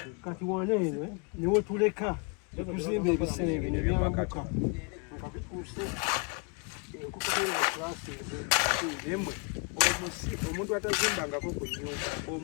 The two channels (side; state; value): right; quieter; 34.5 dB